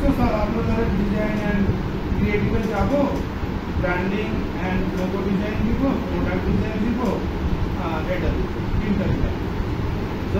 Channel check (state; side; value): identical; both; correlation 1.00